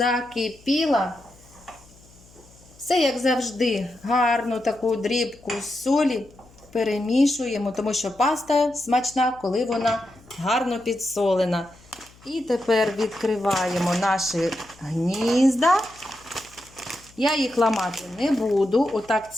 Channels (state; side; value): noise; left; hum, 26 dB below the sound